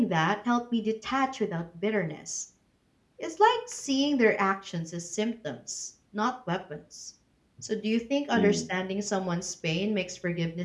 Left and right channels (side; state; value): both; identical; correlation 1.00